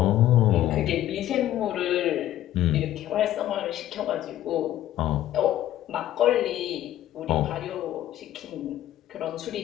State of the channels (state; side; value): quieter; right; 13.0 dB